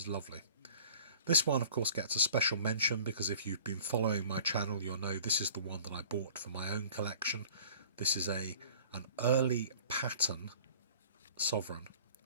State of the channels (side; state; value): both; inverted; correlation -0.46